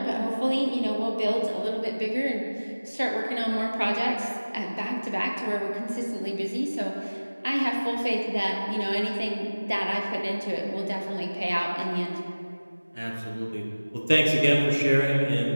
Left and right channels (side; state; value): both; inverted; correlation -1.00